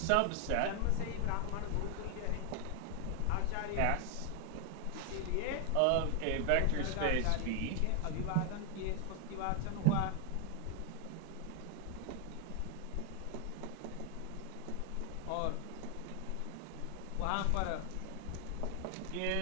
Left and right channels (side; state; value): both; different; correlation 0.01